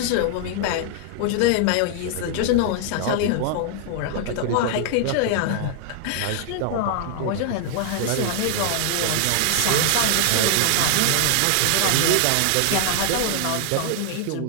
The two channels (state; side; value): different; both; correlation 0.00